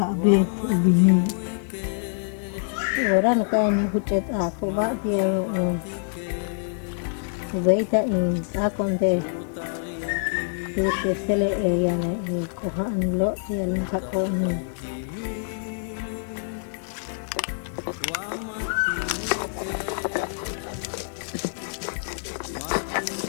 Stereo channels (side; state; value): right; silent; digital silence